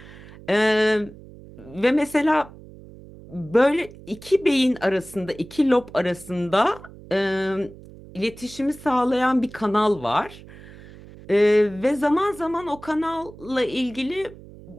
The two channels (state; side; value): noise; right; hum, 19 dB below the sound